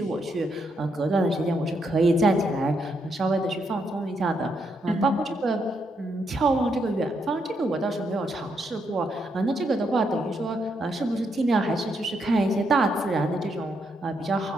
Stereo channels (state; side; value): normal; both; correlation 0.78